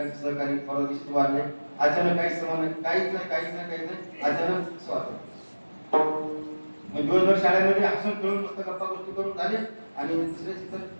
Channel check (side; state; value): both; inverted; correlation -1.00